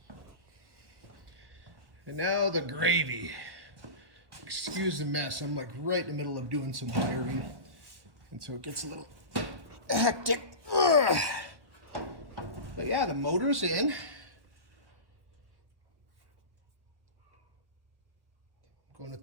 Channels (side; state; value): left; late; 1.1 ms